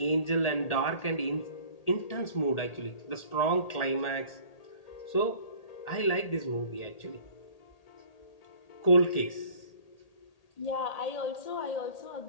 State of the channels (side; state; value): right; late; 1.8 ms